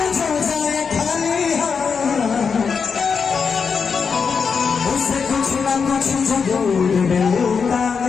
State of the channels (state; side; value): quieter; right; 5.8 dB